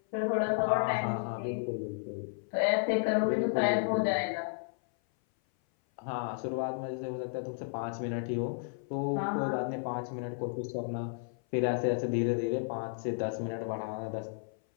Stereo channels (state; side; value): silent; right; 56 dB below the other